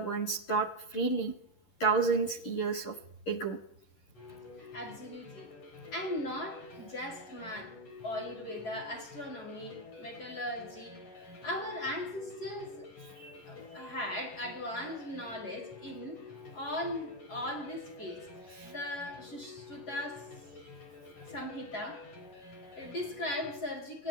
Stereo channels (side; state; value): right; late; 11 ms